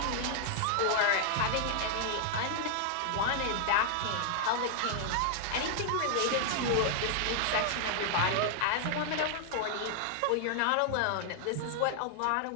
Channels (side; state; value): both; different; correlation -0.01